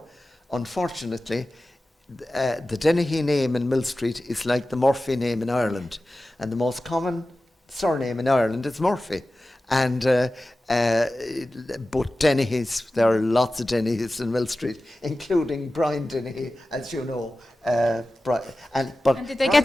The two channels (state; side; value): normal; both; correlation 0.95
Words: unfortunately, the Dennehy name in Millstreet is like the Murphy name in Ireland, and the most common surname in Ireland is Murphy. And but Dennehy's, there are lots of Dennehy's in Millstreet, including Brian Dennehy, as you know. And did they get